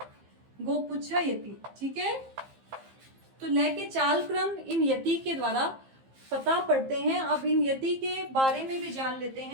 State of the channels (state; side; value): late; left; 15 ms